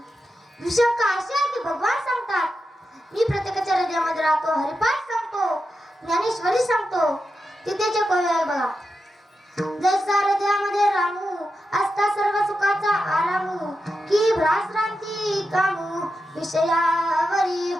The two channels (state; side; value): normal; both; correlation 0.88